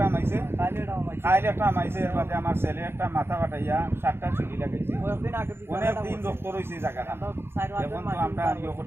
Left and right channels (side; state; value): left; late; 0.11 ms